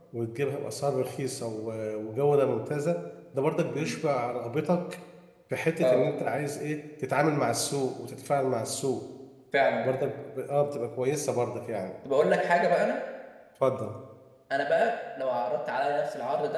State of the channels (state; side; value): identical; both; correlation 1.00